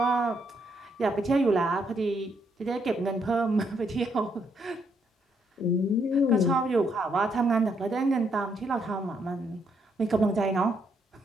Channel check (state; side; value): normal; both; correlation 0.74